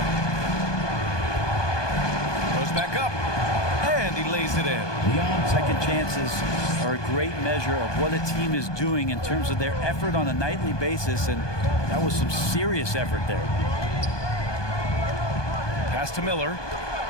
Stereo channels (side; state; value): right; late; 1.2 ms